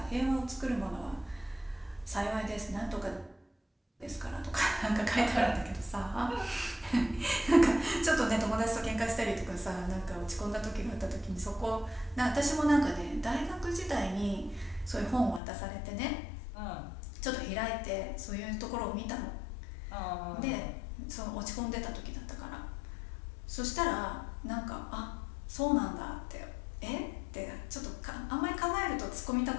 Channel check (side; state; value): right; drops out; at 15.4 s